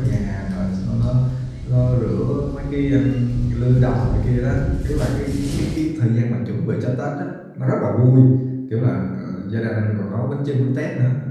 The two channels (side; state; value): both; identical; correlation 1.00